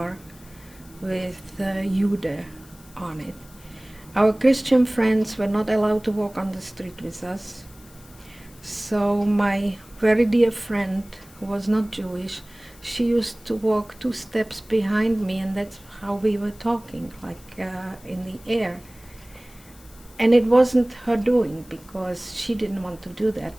with Jude on it. Our Christian friends were not allowed to walk on the street with us. So my very dear friend, who was not Jewish, she used to walk 2 steps behind me, and that's how we were talking, like in the air. And it wasn't her doing, because she didn't want to do that,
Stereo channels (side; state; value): left; noise; hiss, 25 dB below the sound